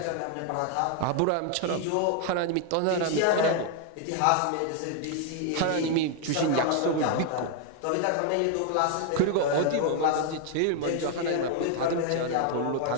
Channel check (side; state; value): both; different; correlation 0.00